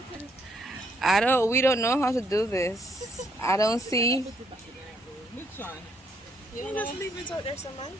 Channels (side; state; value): both; normal; correlation 0.72